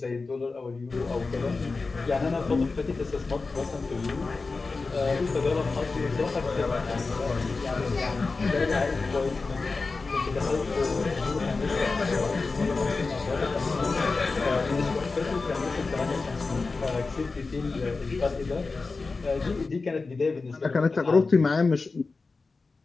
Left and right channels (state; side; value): quieter; right; 4.0 dB